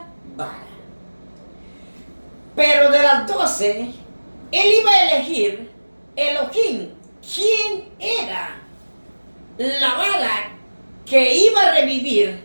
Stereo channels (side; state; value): both; inverted; correlation -1.00